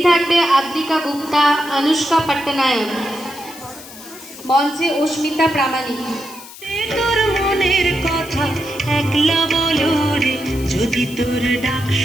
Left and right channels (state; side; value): noise; left; hiss, 17 dB below the sound